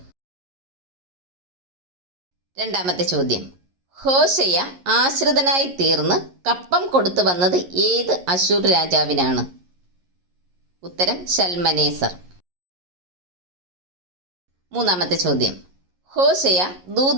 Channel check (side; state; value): left; late; 11 ms